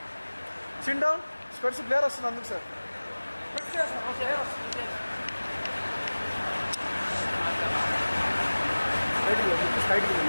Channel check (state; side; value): inverted; both; correlation -1.00